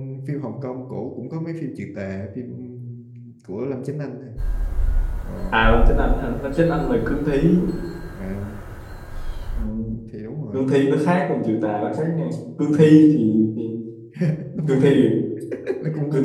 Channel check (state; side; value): identical; both; correlation 1.00